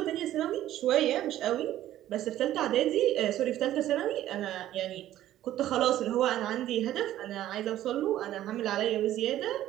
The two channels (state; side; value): quieter; left; 13.2 dB